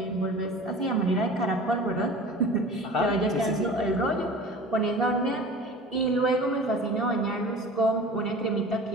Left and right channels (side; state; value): both; normal; correlation 0.39